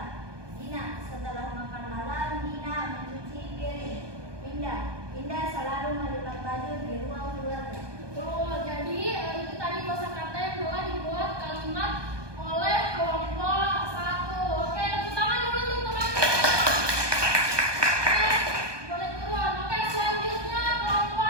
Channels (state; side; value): late; left; 1.2 ms